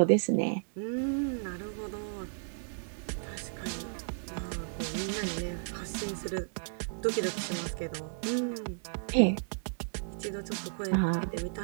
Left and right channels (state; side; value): silent; left; digital silence